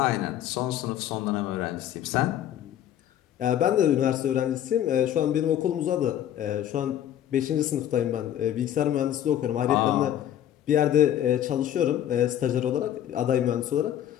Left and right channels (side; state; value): right; quieter; 11.1 dB